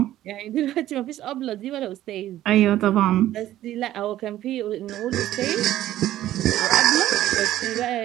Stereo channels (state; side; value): quieter; left; 13.6 dB